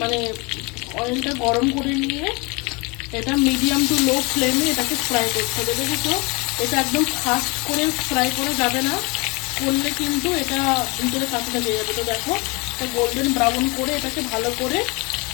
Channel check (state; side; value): quieter; right; 28.1 dB